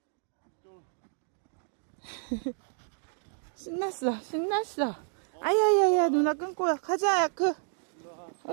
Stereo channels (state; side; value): silent; left; 57 dB below the other